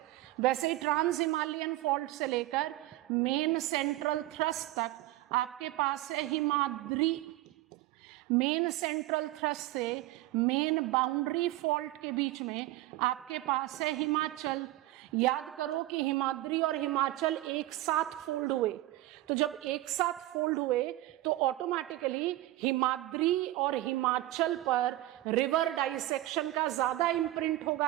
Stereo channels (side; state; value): left; quieter; 16.6 dB